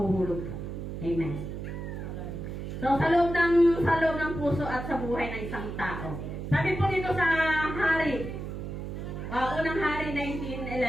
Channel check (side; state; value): right; noise; hum, 6 dB below the sound